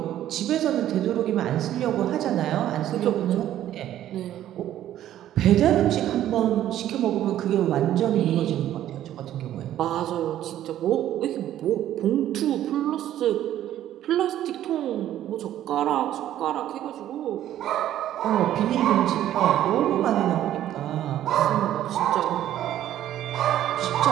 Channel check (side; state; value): left; quieter; 12.2 dB